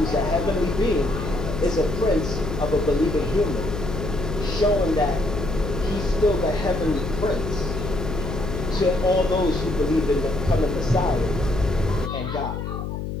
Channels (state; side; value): noise; left; hum, 5 dB below the sound